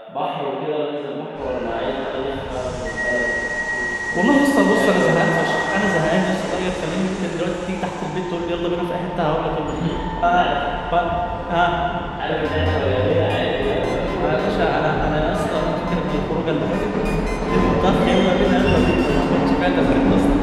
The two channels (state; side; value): identical; both; correlation 1.00